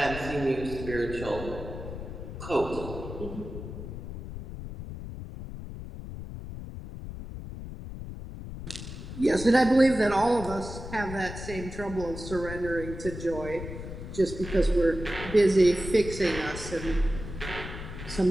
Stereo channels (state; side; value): noise; left; rumble, 9 dB below the sound